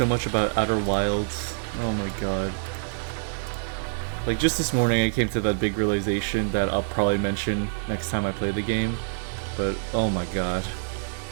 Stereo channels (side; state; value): left; silent; digital silence